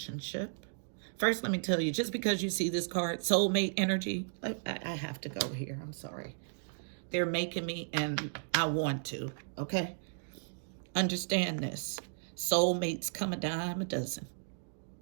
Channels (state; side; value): silent; left; digital silence